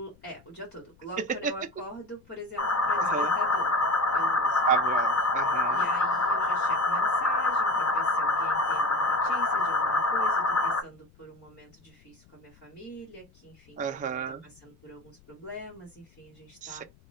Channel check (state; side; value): noise; left; rumble, 29 dB below the sound